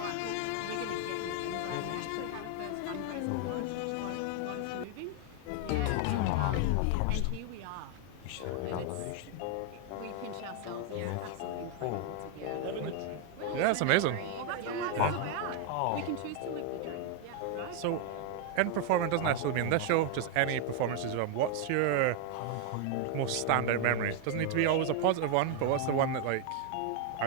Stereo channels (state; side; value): different; both; correlation 0.01